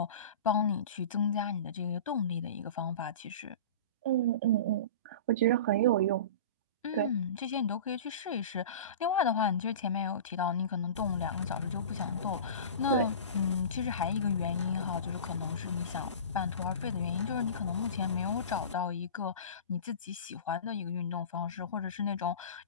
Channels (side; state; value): both; inverted; correlation -0.34